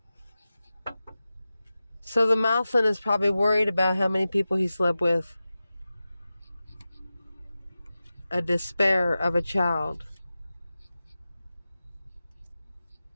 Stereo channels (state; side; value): inverted; both; correlation -0.94